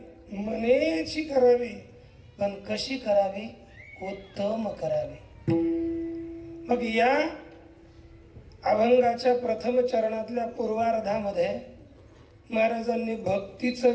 मनेची करावी. पण कशी करावी उत्तम करावे. मग या अभंगाच्या प्रथम चरणातल्या पूर्वार्धामध्ये महाराजांनी भक्तीचं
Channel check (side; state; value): both; identical; correlation 1.00